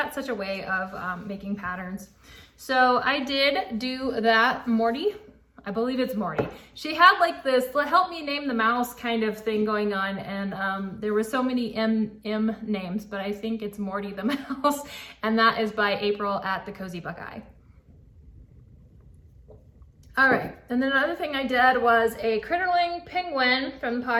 such a way of making patterns. So I did do that. Morty, I believe it's Morty. She had like this help me name the mouse kind of thing going on, and there were so many M names, but I think it's Morty the mouse, and that is by April at the Cozy Buckeye. All right, and then another thing I did was a Critterling penguin from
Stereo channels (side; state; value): both; identical; correlation 1.00